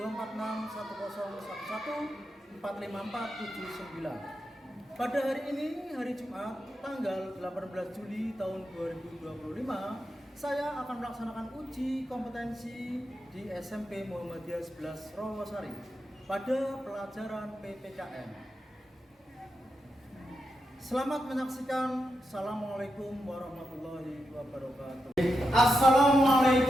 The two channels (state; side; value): normal; both; correlation 0.87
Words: 2461011454779. Pada hari ini, hari Jumat, tanggal 18 Juli tahun 2025, saya akan melaksanakan uji kompetensi di SMP Muhammadiyah 11 Rawasari pada pelajaran PPKN. Selamat menyaksikan. Assalamualaikum warahmatullahi wabarakatuh.